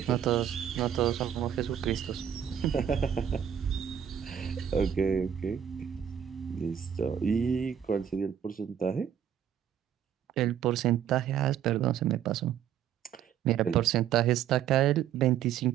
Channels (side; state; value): left; quieter; 9.2 dB